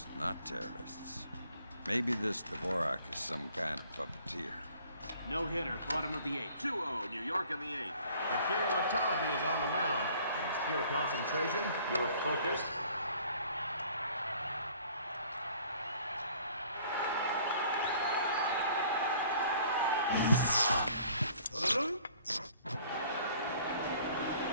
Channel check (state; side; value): inverted; both; correlation -0.55